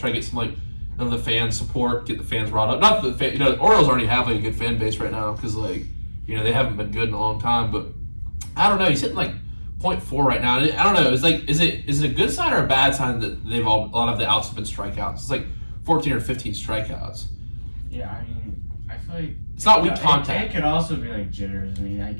to get some like of the fan support, get the fans riled up. Not that the Orioles already have like a good fan base right now because like they haven't been good in a long time. But I don't know. He's hitting like 0.4 right now. And I don't know. It's like is it a good sign or a bad sign that a lot of the outs have been strikeouts? It's like 14 or 15 strikeouts. Yeah, I mean, I feel like It's not weak contact. It could also be like jitters. I mean, I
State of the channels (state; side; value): inverted; both; correlation -1.00